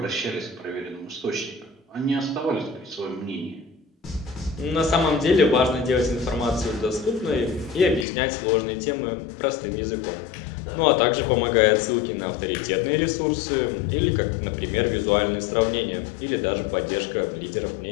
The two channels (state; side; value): drops out; right; at 8.1 s